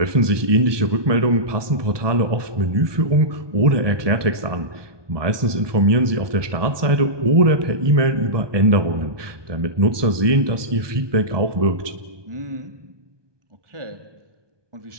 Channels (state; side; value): late; left; 1.2 ms